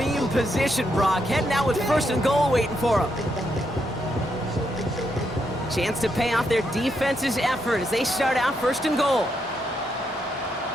position, Brock. Heading out with first and goal waiting for them. Chance to pay off their defense's effort as they start out first and goal.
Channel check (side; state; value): both; normal; correlation 0.79